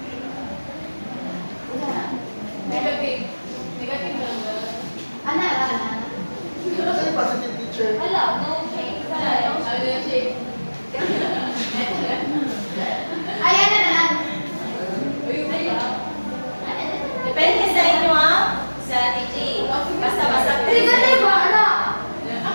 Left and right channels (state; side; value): inverted; both; correlation -1.00